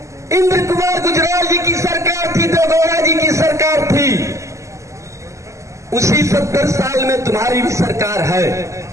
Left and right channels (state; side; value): late; left; 0.15 ms